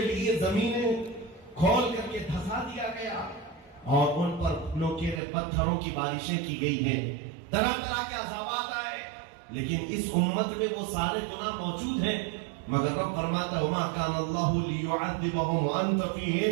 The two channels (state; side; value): drops out; left; at 5.2 s